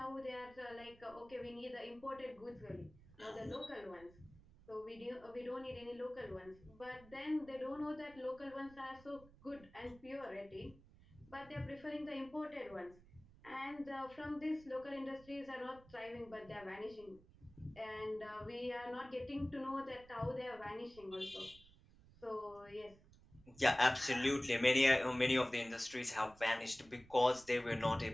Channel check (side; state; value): right; noise; rumble, 23 dB below the sound